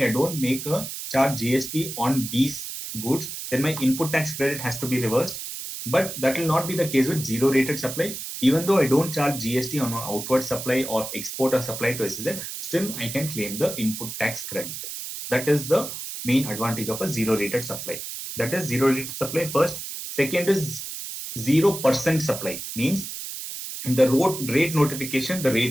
I don't make a charge GST on these goods, then my input tax credit has to be reversed. But that will not be the case with zero rated supply. Even though I don't charge GST on an outward supply or export or supply to SEZ, still I can claim the input tax credit. That is the main advantage of a zero rated supply. That is zero rated supply first. Second is 0% supply, means in the rate notification, the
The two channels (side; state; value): right; noise; hiss, 8 dB below the sound